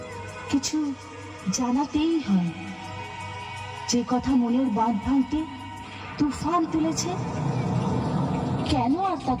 কিছু জানাতেই হয়। যে কথা মনের বাঁধ ভাঙতে তুফান তুলেছে, কেন আর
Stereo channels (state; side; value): identical; both; correlation 1.00